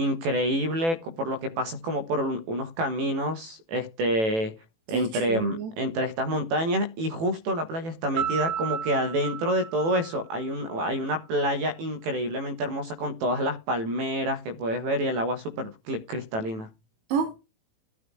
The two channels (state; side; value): late; left; 18 ms